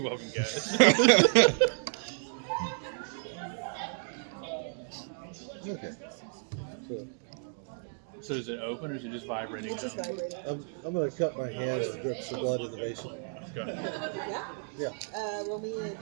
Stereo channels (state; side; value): silent; left; 56 dB below the other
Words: welcome, guys. Okay. So is it open or is it just vibrating? It's just vibrating. I'm going to cut my hand and drip some blood in the basin. Go. Yeah? Yeah. Roll me